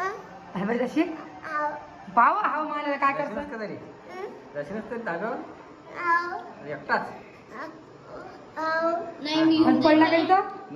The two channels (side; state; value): both; identical; correlation 1.00